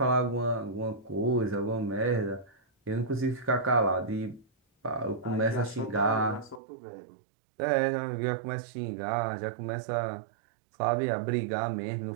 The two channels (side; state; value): left; drops out; at 6.6 s